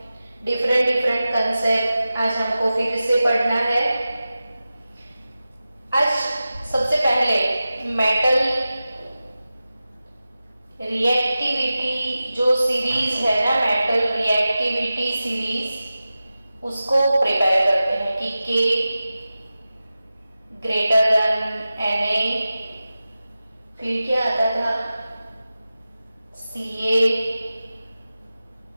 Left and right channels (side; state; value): both; inverted; correlation -0.95